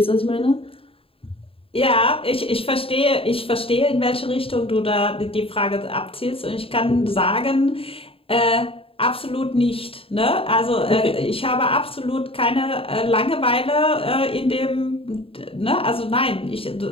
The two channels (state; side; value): late; right; 0.27 ms